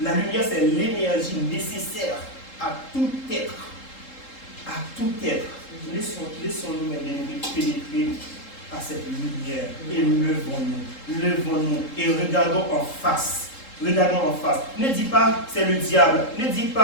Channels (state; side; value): late; right; 3.7 ms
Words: La lumière, c'est l'énergie nécessaire à tout être. À tout être. Laissons-nous, mes bien-aimés, pénétrer à cette lumière et levons-nous et regardons en face. Regardons en face. Ne dis pas c'est le diable, ne dis